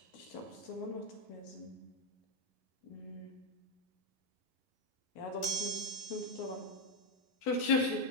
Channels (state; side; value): late; right; 11 ms